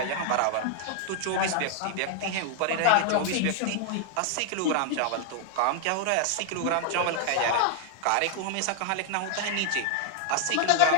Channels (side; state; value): both; different; correlation 0.00